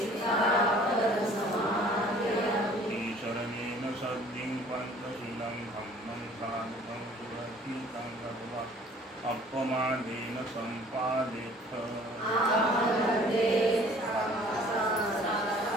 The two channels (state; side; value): normal; both; correlation 0.52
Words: ईशरणेन सद्धिं पञ्चशीलं धम्मं साधुकं सुरक्षितं गत्वा अपमानेन सम्पादेथ